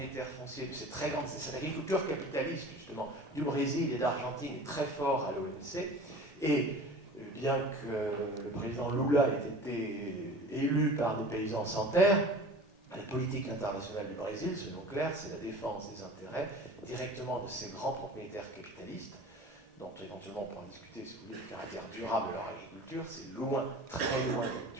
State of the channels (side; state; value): both; normal; correlation 0.40